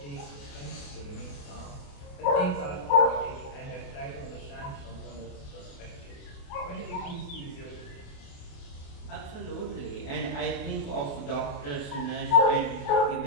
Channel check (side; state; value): right; late; 28 ms